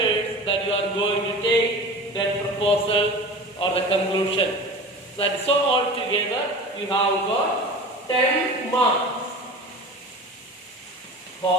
that you are going to take. Then proposal or the conclusion. So all together you have got 10 marks.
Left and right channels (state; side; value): normal; both; correlation 0.35